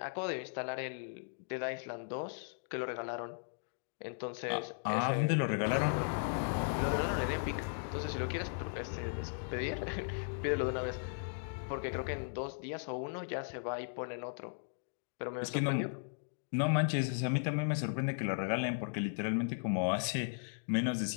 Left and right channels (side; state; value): right; silent; digital silence